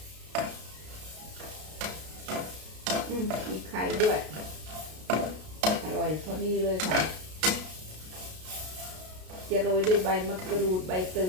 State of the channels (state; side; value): late; left; 33 ms